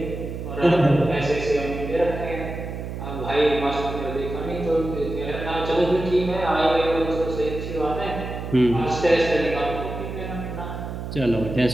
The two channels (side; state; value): right; noise; hum, 7 dB below the sound